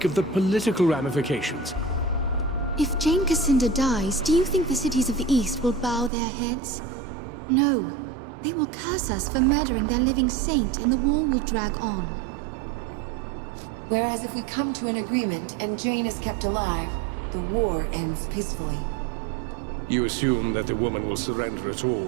of the political ramifications. If Jane Cassinda dies, do you think the cities of the East will bow their heads? No. They will curse us for murdering their living saint, and the war will drag on. Whereas if we come to an agreement and Jane is kept alive, the war ends peacefully. You assume that the woman will surrender at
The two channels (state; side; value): drops out; left; at 6.1 s